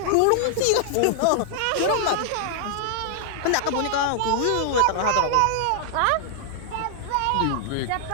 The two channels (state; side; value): different; both; correlation -0.01